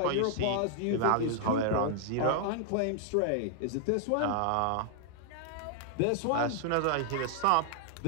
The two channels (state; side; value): different; both; correlation 0.00